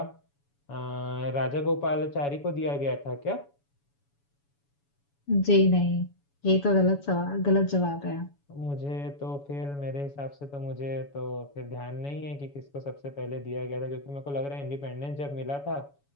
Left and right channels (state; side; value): late; right; 7.1 ms